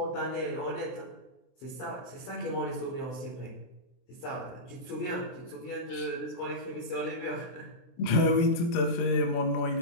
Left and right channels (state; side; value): late; right; 24 ms